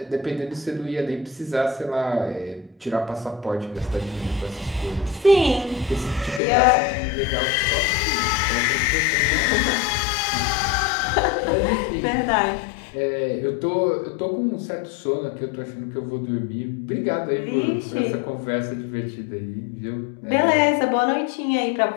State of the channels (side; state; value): right; drops out; at 6.4 s